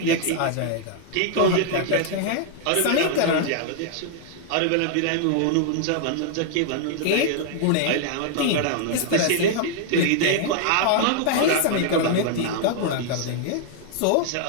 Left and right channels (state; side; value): different; both; correlation -0.01